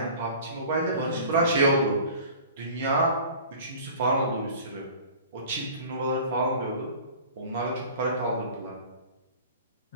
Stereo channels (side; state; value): both; inverted; correlation -0.43